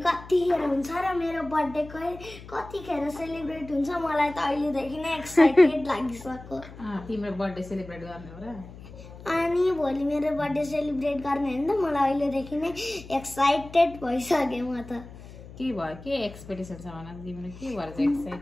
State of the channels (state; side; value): noise; left; hum, 16 dB below the sound